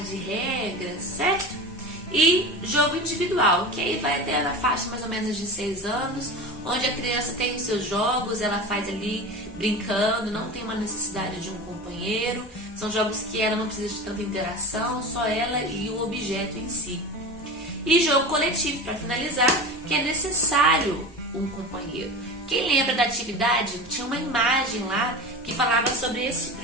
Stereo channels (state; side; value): normal; both; correlation 0.29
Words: de regras, certo? E jogo individual, que aí vai até na faixa mais ou menos de 6 anos, onde a criança tem os seus jogos, ela faz ali brincando, não tem uma necessidade de um companheiro. São jogos que ela não precisa de tanta interação, só ela e o objeto em si. E jogo coletivo, para finalizar, que é necessário um companheiro. Quem lembra da atividade, tinha uma imagem lá que falava sobre esse tipo